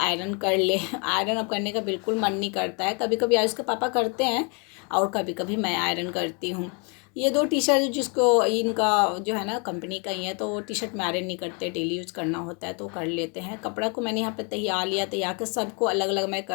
कर ले। आयरन अब करने का बिल्कुल मन नहीं करता है, कभी कभी आयुष के पापा करते हैं और कभी कभी मैं आयरन करती हूँ। ये 2 टी शर्ट जिसको इनका जो है ना कंपनी का ही है, तो वो टी शर्ट में आयरन नहीं करते, डेली यूज़ करना होता है तो कर लेते हैं। कपड़ा को मैंने यहाँ पे तैयार लिया, तैयार कर सबको अलग अलग मैं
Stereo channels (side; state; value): right; quieter; 35.0 dB